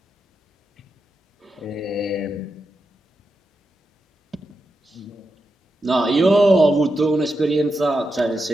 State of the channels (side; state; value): both; normal; correlation 0.87